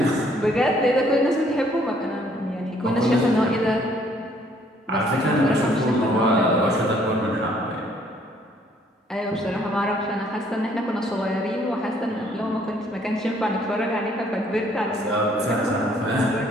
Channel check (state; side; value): normal; both; correlation 0.63